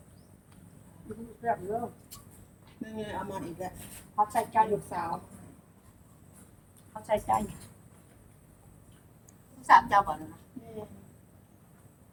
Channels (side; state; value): both; identical; correlation 1.00